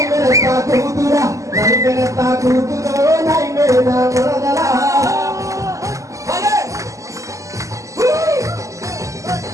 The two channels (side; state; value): left; late; 0.16 ms